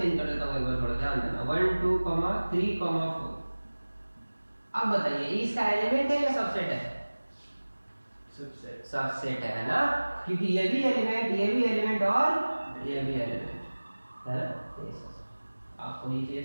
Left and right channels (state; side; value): inverted; both; correlation -1.00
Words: कर देता हूँ, एक बार थोड़ा ध्यान देना। 1 2 3 4 अब बताइए इसका एलिमेंट है या सबसेट है? सबसेट। सबसेट है ना, क्योंकि ये भी एलिमेंट, ये भी एलिमेंट और ये भी एलिमेंट है ना। आपको ये